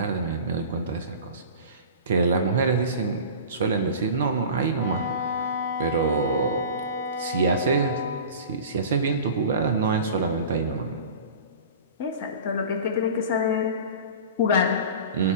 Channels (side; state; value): both; inverted; correlation -0.37